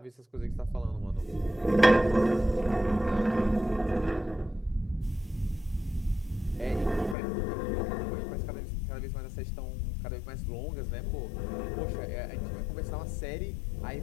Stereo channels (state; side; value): drops out; right; at 7.2 s